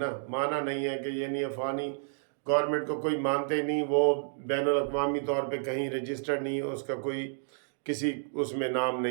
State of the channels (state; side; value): silent; left; digital silence